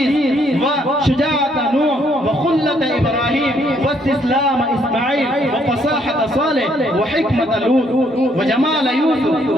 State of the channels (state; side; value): normal; both; correlation 0.69